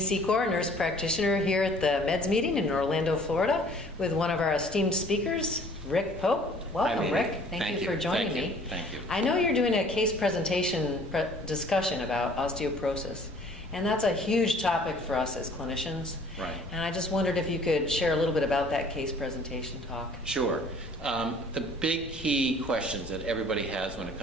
nurse practitioner here at the Meds meeting in Orlando, Florida, with one of our esteemed speakers, Rick Pope. Welcome, Rick. Thank you for joining me. Thank you. I know you're doing a case presentation discussion about osteoporosis, and that's a huge topic for us as clinicians. Right. And I just wondered if you could share a little bit about that case presentation talk. Sure. The big key questions that everybody has when it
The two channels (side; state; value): left; noise; rumble, 17 dB below the sound